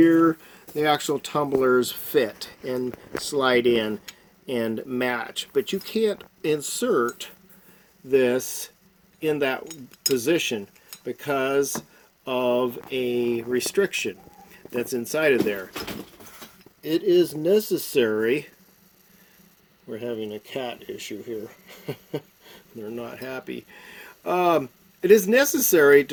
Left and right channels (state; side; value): identical; both; correlation 1.00